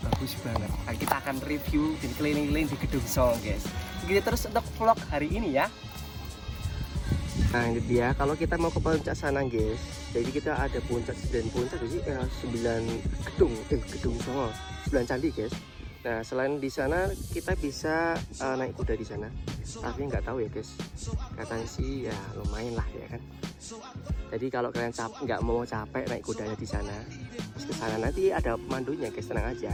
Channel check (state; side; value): identical; both; correlation 1.00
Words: bagus banget. Nah, kita akan review dan keliling-keliling di Gedung Songo guys. Begitu terus untuk vlog hari ini ya. Nah ini dia, kalau kita mau ke puncak sana guys, jadi kita ada puncak dan puncak sih 9 gedung Songo, 9 candi guys. Nah selain di sana kita bisa naik kuda di sana, tapi nggak tahu ya guys, katanya sih ya lumayan lah ya kan. Jadi kalau kalian nggak mau capek naik kudanya di sana, ke sana nanti ada pemandunya guys, tenang aja.